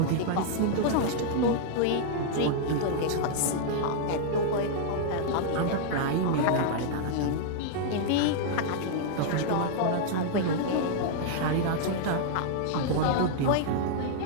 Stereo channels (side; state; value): both; different; correlation -0.01